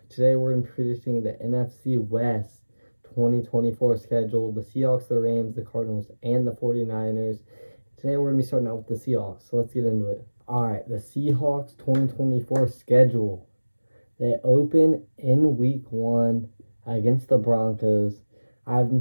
Today we're going to be predicting the NFC West 2024 schedule, the Seahawks, the Rams, the Cardinals, and the 49ers. Today we're going to be starting out with the Seahawks, so let's get into it. Alright, the Seahawks 2024 schedule. They open in week 1 against the Broncos. I have them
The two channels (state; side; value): inverted; both; correlation -1.00